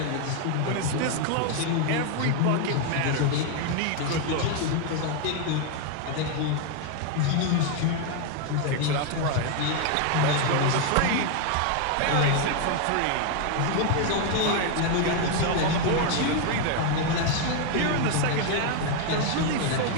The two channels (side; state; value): both; different; correlation 0.00